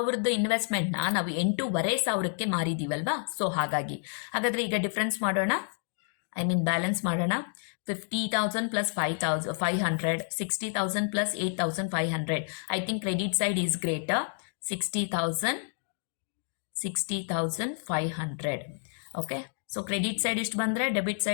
ಇನ್ವೆಸ್ಟ್ಮೆಂಟ್ನ ನಾವು 8,500ಕ್ಕೆ ಮಾರಿದ್ದೀವಲ್ವಾ? ಸೊ ಹಾಗಾದರೆ ಈಗ ಡಿಫ್ರೆನ್ಸ್ ಮಾಡೋಣ, ಬ್ಯಾಲೆನ್ಸ್ ಮಾಡೋಣ. 50,000 plus 5,500, 60,000 plus 8,500. I think credit side is greater. 60,500. Okay. So credit side ಇಷ್ಟು ಬಂದರೆ ಡೆಬಿಟ್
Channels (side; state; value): right; silent; 58 dB below the other